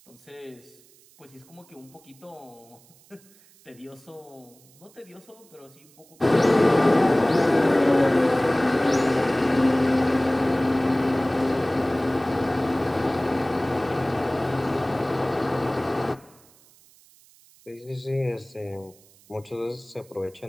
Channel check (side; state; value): right; noise; hiss, 28 dB below the sound